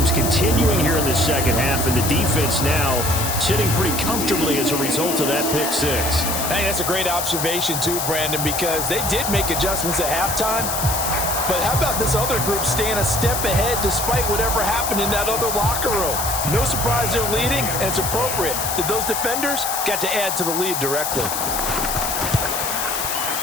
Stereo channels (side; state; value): left; noise; hiss, 3 dB below the sound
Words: continuing here in the second half, and the defense now sitting pretty comfortably as a result of that pick six. I think that's a great observation too, Brandon, because they did make adjustments at halftime. But how about this other group staying a step ahead despite whatever happened in that other locker room? No surprise they're leading, and it's appropriate that those defenders got to add to the lead directly.